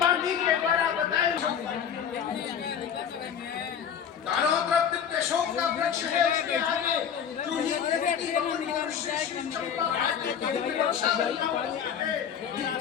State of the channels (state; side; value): quieter; right; 8.1 dB